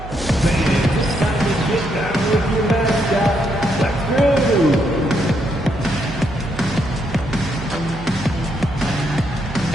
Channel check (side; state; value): right; noise; hum, 12 dB below the sound